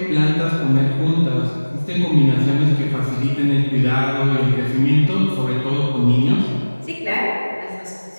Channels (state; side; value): inverted; both; correlation -1.00